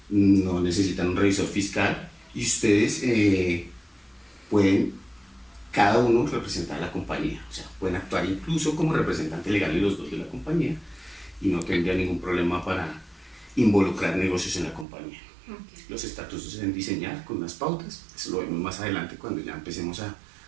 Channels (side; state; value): left; drops out; at 14.9 s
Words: no necesitan un revisor fiscal y ustedes pueden cada uno representar a la compañía, o sea, pueden actuar incluso como representante legal de los dos de la compañía y no tendría ningún problema para involucrar negocios en la compañía. Okay. Los estatutos se deben diseñar con unas pautas, eso lo vemos más adelante cuando ya empecemos a